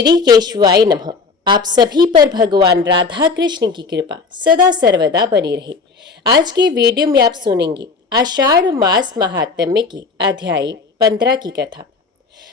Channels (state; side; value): quieter; right; 4.6 dB